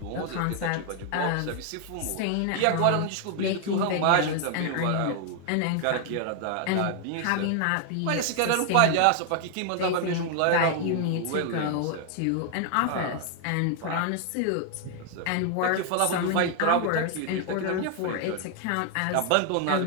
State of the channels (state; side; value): different; both; correlation 0.00